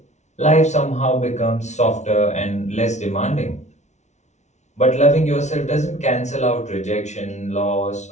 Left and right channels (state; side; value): late; right; 0.33 ms